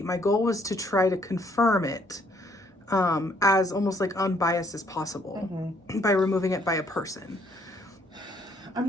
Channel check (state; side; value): normal; both; correlation 0.65